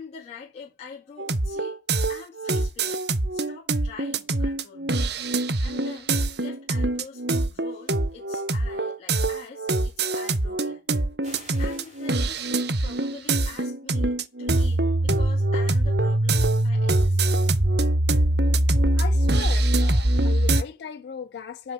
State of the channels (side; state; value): both; normal; correlation 0.72